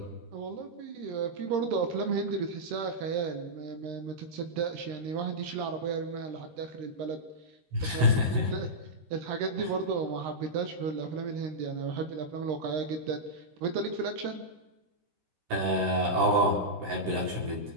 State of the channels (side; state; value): left; late; 13 ms